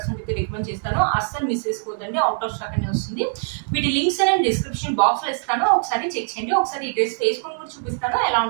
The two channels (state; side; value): silent; left; digital silence